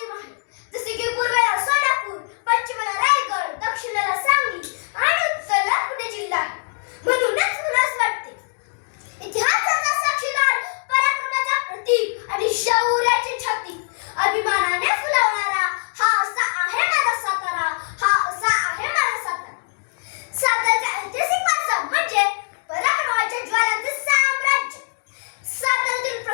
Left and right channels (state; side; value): silent; right; digital silence